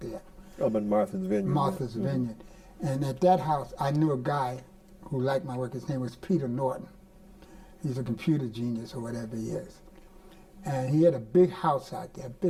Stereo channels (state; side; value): identical; both; correlation 1.00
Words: Up in Martha's Vineyard. Martha's Vineyard. And at that house, I knew a guy who liked my work. His name was Peter Norton. He's a computer genius or whatever he is. And he had a big house out there, a